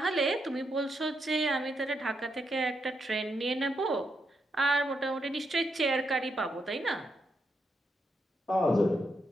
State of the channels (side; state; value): both; normal; correlation 0.81